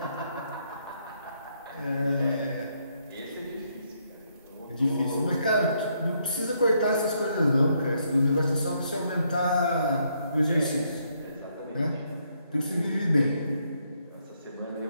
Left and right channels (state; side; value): inverted; both; correlation -0.74